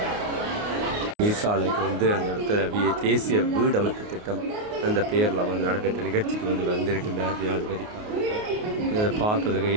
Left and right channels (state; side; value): late; left; 29 ms